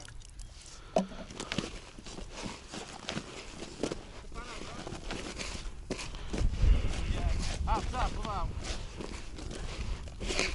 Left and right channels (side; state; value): both; identical; correlation 1.00